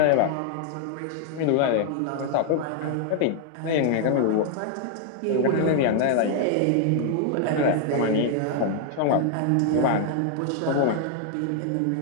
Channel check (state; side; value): different; both; correlation 0.00